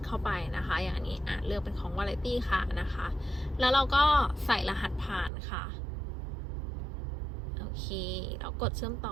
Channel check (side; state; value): left; drops out; at 5.3 s